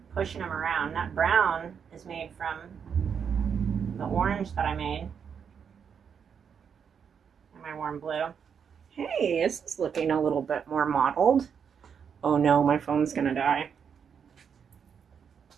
pushing them around. That brown is made from the orange that I made. And my warm blue. Hey, this is looking a little bit more mottled. Oh no, my phone's gonna die.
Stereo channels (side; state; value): left; quieter; 7.1 dB